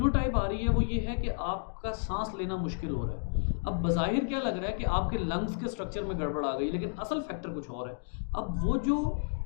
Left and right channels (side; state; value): right; silent; digital silence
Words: आ रही है वो ये है कि आपका सांस लेना मुश्किल हो रहा है। अब बज़ाहिर क्या लग रहा है कि आपके लंग्स के स्ट्रक्चर में गड़बड़ आ गई, लेकिन असल फैक्टर कुछ और है। अब वो जो